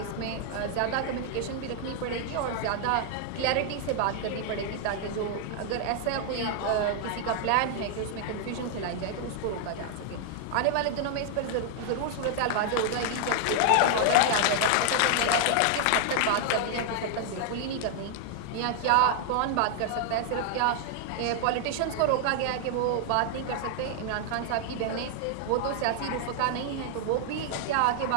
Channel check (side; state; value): both; different; correlation 0.00